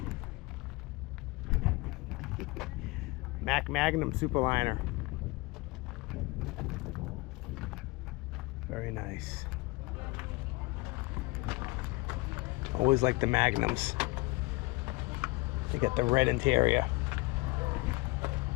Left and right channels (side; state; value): right; quieter; 23.4 dB